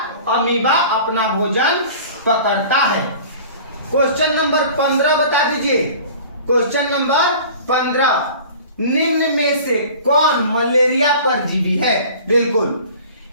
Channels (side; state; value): both; inverted; correlation -0.43